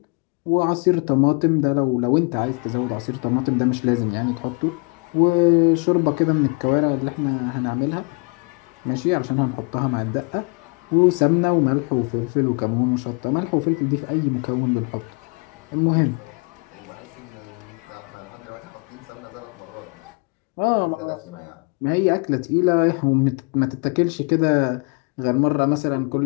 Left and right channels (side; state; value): right; quieter; 33.1 dB